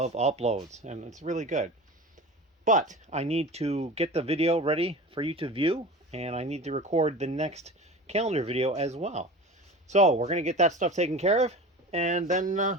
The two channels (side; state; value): both; normal; correlation 0.34